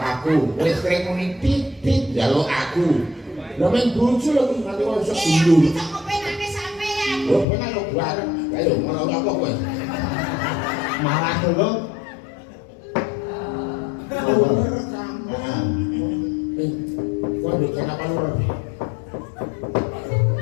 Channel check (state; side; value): drops out; right; at 7.5 s